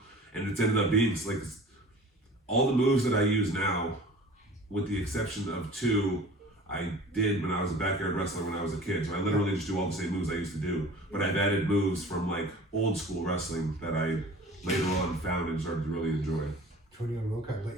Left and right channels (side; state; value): both; normal; correlation 0.43